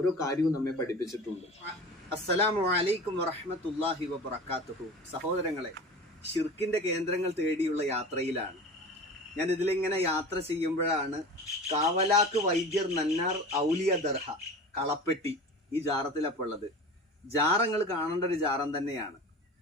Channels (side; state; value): both; normal; correlation 0.35